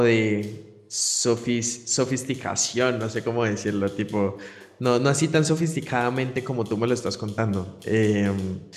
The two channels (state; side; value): identical; both; correlation 1.00